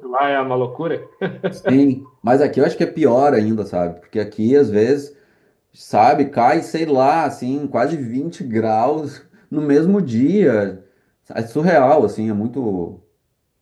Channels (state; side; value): identical; both; correlation 1.00